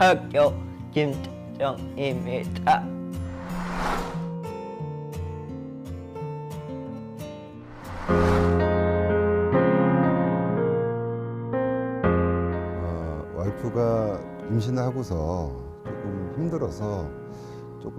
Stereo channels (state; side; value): identical; both; correlation 1.00